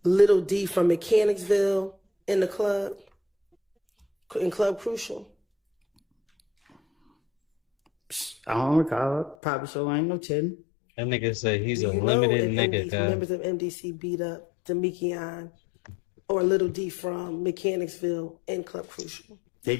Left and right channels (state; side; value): drops out; right; at 9.3 s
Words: Little D from Mechanicsville in the club, in Club Crucial? I don't recall. Probably so. I ain't no telling. That nigga say he's Do a you know limited if nigga, guy. members of MDC beat up Demekion or Little D from Mechanicsville in Club Crucial? They